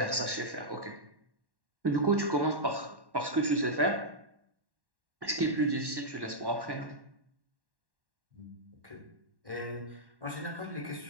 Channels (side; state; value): left; late; 1.1 ms